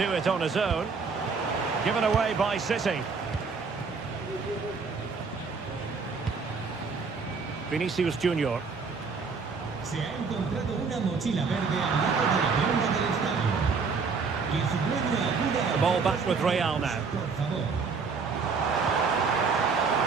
do it on his own. Given away by City. Vinicius Junior. Se ha encontrado una mochila verde al lado de la baranda del estadio. Que su dueño acuda a... The ball back with Real now. Por favor.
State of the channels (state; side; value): quieter; left; 5.0 dB